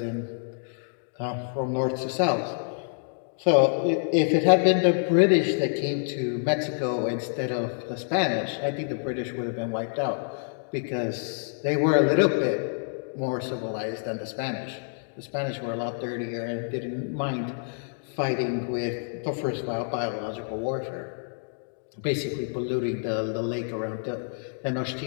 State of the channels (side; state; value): right; silent; digital silence